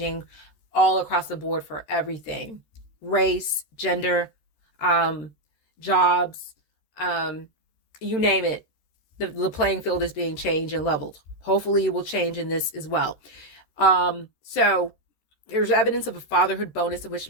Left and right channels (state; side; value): late; right; 13 ms